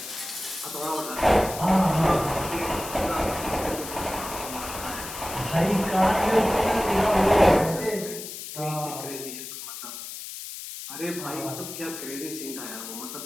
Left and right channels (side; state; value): left; noise; hiss, 10 dB below the sound